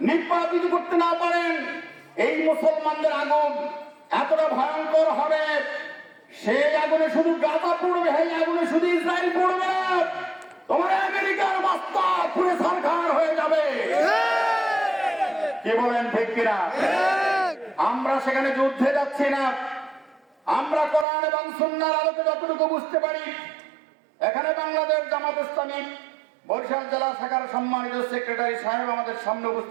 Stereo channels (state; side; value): drops out; left; at 21.1 s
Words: নির্বাপিত করতে না পারেন, এই মুসলমানদের আগুন এতটা ভয়ঙ্কর হবে, সেই আগুনে শুধু গাজা পড়বে, এই আগুনে শুধু ইসরায়েল পড়বে না, তোমার আমেরিকার বাস্তা পুরে সরকার হয়ে যাবে। কি বলেন ঠিক কিনা? আমরা সেখানে যুদ্ধে যাচ্ছি না, আমরা কোরআন এবং সুন্নাহর আলোকে যতটুকু বুঝতে পারি, এখানে বাংলাদেশ জামাত ইসলামী বরিশাল জেলা শাখার সম্মানিত সেক্রেটারি সাহেব আমাদের সামনে